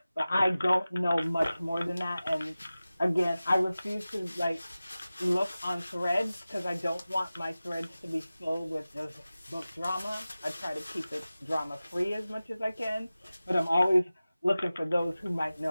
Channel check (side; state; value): both; inverted; correlation -0.96